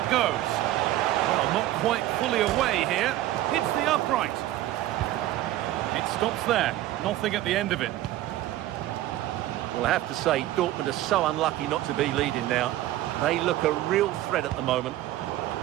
goes. Well, not quite fully away here. Hits the upright. It stops there. Nothing at the end of it. Well, I have to say, Dortmund are so unlucky not to be leading now. They look a real threat at the moment.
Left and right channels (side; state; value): left; quieter; 14.7 dB